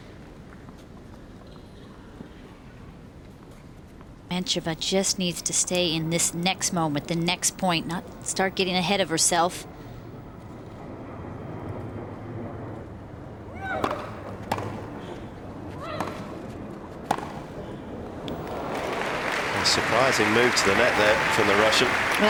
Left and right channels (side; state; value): both; identical; correlation 1.00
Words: Dementieva just needs to stay in this next moment, the next point, not start getting ahead of herself. A surprising move to the net there from the Russian.